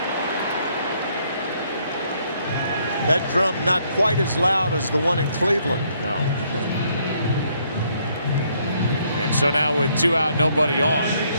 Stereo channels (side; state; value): both; inverted; correlation -0.69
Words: That drum not quite as loud as the one in Cleveland. No. And so now with 2 out, nobody on,